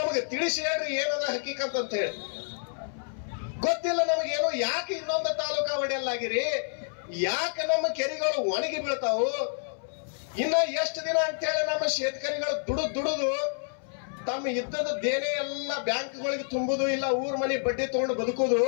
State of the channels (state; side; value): silent; right; 59 dB below the other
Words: ತಿಳಿಸಿ ಹೇಳ್ರಿ ಏನದ ಹಕೀಕತ್ ಅಂತ ಹೇಳಿ. ಗೊತ್ತಿಲ್ಲ ನಮಗೇನು. ಯಾಕೆ ಇನ್ನೊಂದು ತಾಲೂಕಾ ಒಡೆಯಲ್ಲಾಗಿರಿ? ಯಾಕೆ ನಮ್ಮ ಕೆರೆಗಳು ಒಣಗಿ ಬೀಳ್ತಾವು? ಇನ್ನ ಎಷ್ಟು ದಿನ ಅಂತ ಹೇಳಿ ನಮ್ಮ ಶೇತಕರಿಗಳು ದುಡುದು ತಮ್ಮ ಇದ್ದದ ದೇನೆ ಎಲ್ಲ ಬ್ಯಾಂಕ್ಗಳಿಗೆ ತುಂಬುದು, ಇಲ್ಲ ಊರ್ ಮನೆ ಬಡ್ಡಿ ತಗೊಂಡು ಬದುಕುದು.